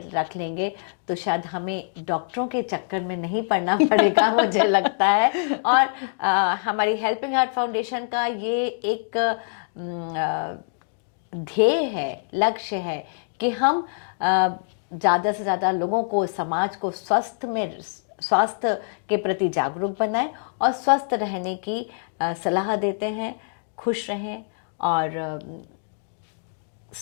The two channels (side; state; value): right; silent; digital silence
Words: रख लेंगे तो शायद हमें डॉक्टरों के चक्कर में नहीं पड़ना पड़ेगा, मुझे लगता है। और हमारी हेल्पिंग हार्ट फाउंडेशन का ये एक ध्येय है, लक्ष्य है कि हम ज़्यादा से ज़्यादा लोगों को, समाज को स्वास्थ्य के प्रति जागरूक बनाएं और स्वस्थ रहने की सलाह देते हैं। खुश रहें और